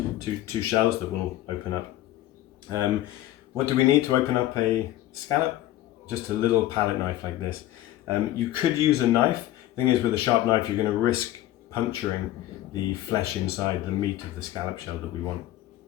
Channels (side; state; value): right; quieter; 14.5 dB